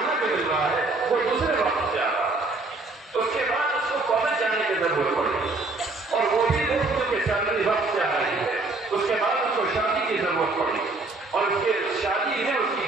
جو مل رہا ہے وہ دوسرے وقت سے آ رہا ہے. اس کے بعد اس کو کالج جانے کی ضرورت پڑی اور وہ بھی لوگ جو سیلری وقت سے آ رہی ہے. اس کے بعد اس کو شادی کی ضرورت پڑی اور اس کے شادی میں اس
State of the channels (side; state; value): left; quieter; 3.2 dB